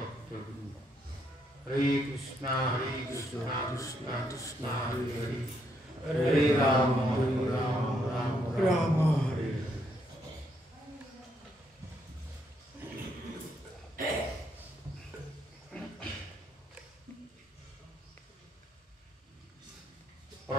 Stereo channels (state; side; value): normal; both; correlation 0.74